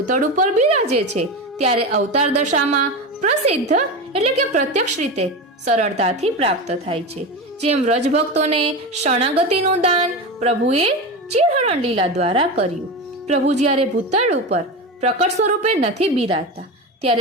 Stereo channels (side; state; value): both; normal; correlation 0.22